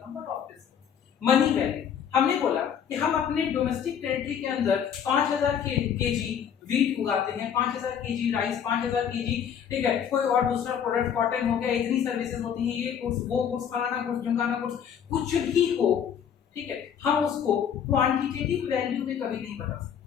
But obviously money value, हमने बोला कि हम अपने डोमेस्टिक टेरिटरी के अंदर 5000 केजी वीट उगाते हैं, 5000 केजी राइस, 5000 केजी, ठीक है, कोई और दूसरा प्रोडक्ट कॉटन हो गया, इतनी सर्विसेज होती हैं, ये गुड्स वो गुड्स, फलाना गुड्स, ढिमकाना गुड्स, कुछ भी हो, ठीक है। हम उसको क्वांटिटेटिव वैल्यू में कभी नहीं बता सकते।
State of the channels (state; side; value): quieter; right; 8.2 dB